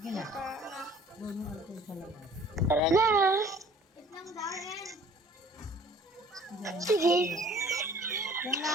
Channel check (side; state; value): both; normal; correlation 0.52